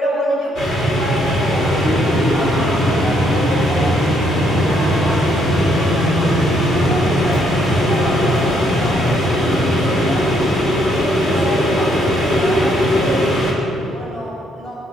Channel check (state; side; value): normal; both; correlation 0.71